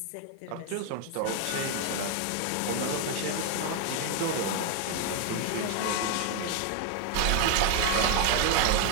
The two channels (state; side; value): different; both; correlation 0.01